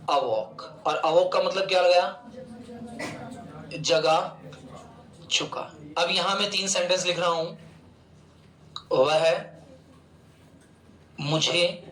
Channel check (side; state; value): both; identical; correlation 1.00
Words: अवॉक। और अवॉक का मतलब क्या लगाया? जगा चुका। अब यहां मैं 3 सेंटेंस लिख रहा हूं। वह मुझे